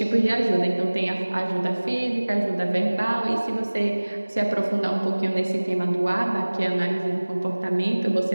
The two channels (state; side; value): inverted; both; correlation -1.00